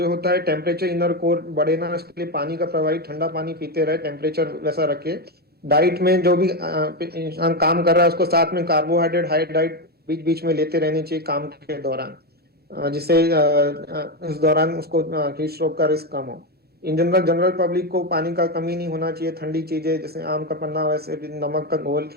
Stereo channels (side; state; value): both; normal; correlation 0.10